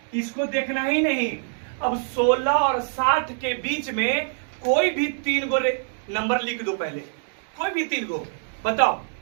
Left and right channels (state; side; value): silent; left; digital silence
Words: इसको देखना ही नहीं। अब 16 और 60 के बीच में कोई भी 3 गो नंबर लिख दो पहले, कोई भी 3 गो। बताओ